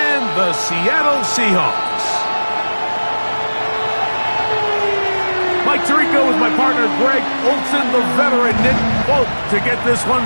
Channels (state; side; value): inverted; both; correlation -1.00